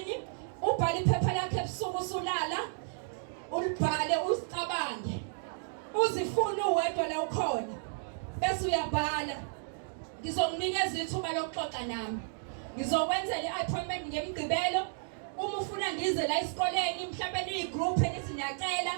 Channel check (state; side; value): silent; left; digital silence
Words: ubhale iphepha lakhe ebusuku usulala ulibhale usicabange. Uzifuna uwedwa la ukhona. Bese uyabhala. Ngizomnikeza ithuba lokuxoxa nami. Ngizokwenzela i-appointment ngemgqibelo. Uma ufuna ngize la esikoleni mhlawumbe niyigroup enithi niyacela